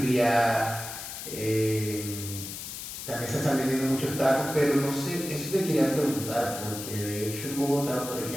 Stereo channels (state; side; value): noise; left; hiss, 8 dB below the sound